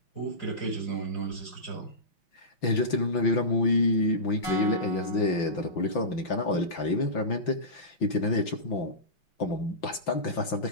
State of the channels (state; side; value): late; right; 5.8 ms